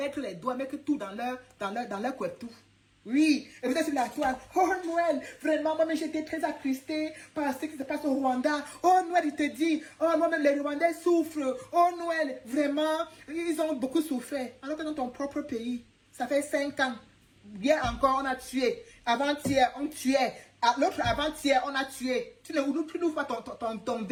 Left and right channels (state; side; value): identical; both; correlation 1.00